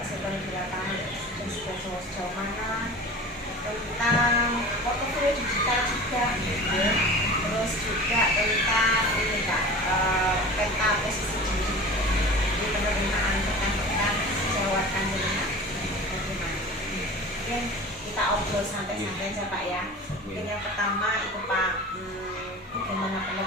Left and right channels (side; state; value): both; normal; correlation 0.37